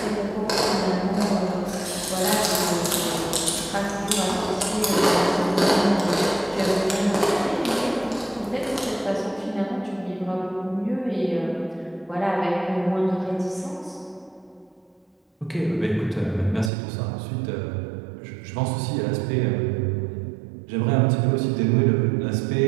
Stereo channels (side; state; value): left; drops out; at 16.7 s